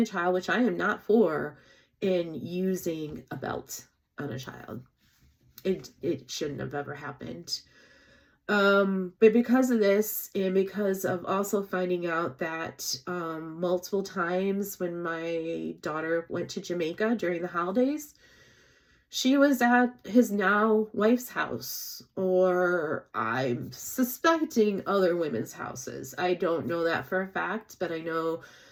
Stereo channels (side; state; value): both; identical; correlation 1.00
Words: a child, which I am not for, and using a belt on a child. It shouldn't have ever happened. But because of this, and because of also finding out that multiple times when my daughter went to Jamaica during the holidays, she was at his now wife's house, or I'm suspecting other women's houses. I don't know that for a fact, but I know